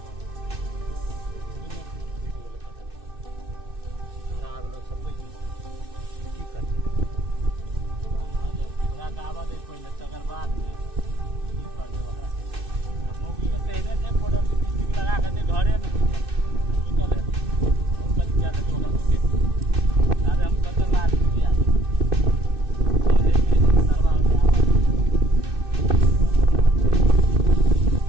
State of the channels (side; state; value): left; late; 2.6 ms